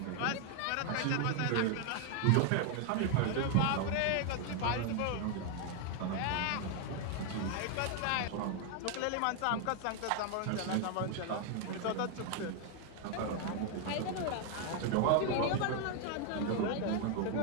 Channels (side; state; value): both; different; correlation 0.01